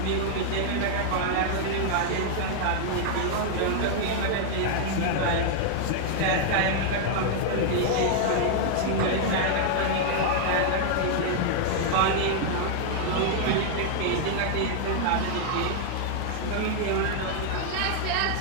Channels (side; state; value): both; different; correlation 0.00